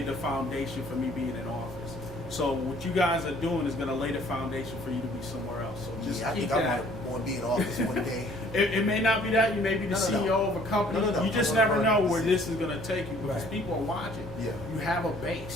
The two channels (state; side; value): normal; both; correlation 0.57